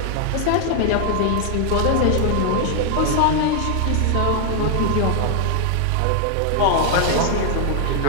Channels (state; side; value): different; both; correlation 0.00